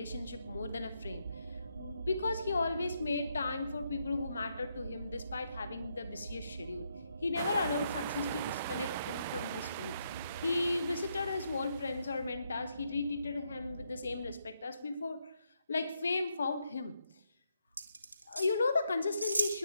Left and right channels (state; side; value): inverted; both; correlation -0.79